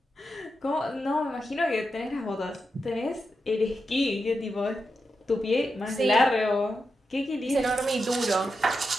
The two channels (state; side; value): normal; both; correlation 0.87